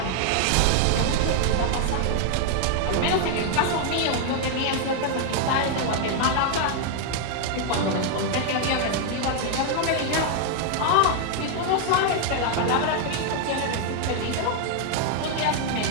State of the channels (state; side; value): different; both; correlation 0.00